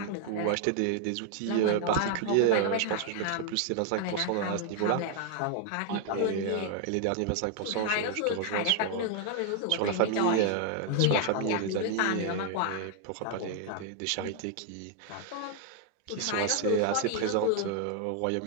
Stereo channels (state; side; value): different; both; correlation 0.00